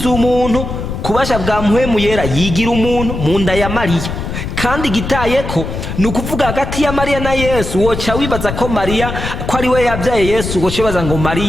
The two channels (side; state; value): left; noise; rumble, 6 dB below the sound